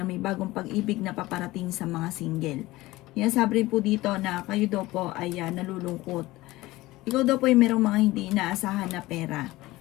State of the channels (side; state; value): right; quieter; 18.7 dB